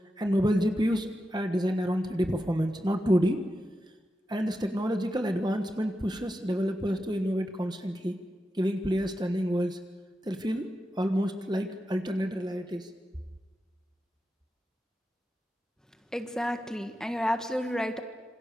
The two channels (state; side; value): normal; both; correlation 0.89